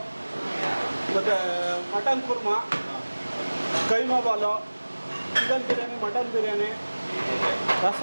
ಮತ್ತು mutton korma, keema ball, chicken biryani, mutton biryani, okay,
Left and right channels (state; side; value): inverted; both; correlation -1.00